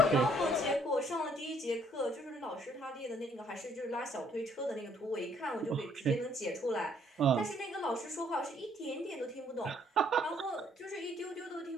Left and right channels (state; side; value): normal; both; correlation 0.65